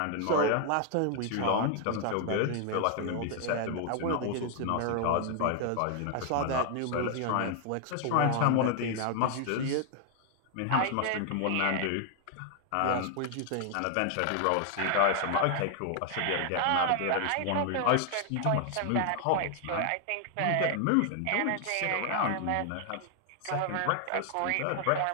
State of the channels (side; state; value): both; different; correlation 0.00